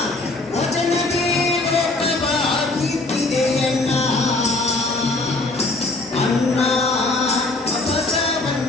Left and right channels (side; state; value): right; quieter; 3.0 dB